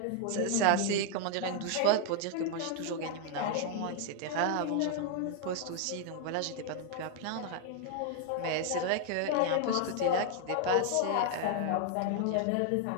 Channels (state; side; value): different; both; correlation 0.00